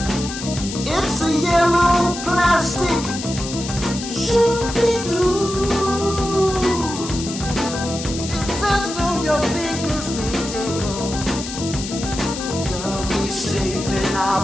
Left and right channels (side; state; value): left; noise; hiss, 9 dB below the sound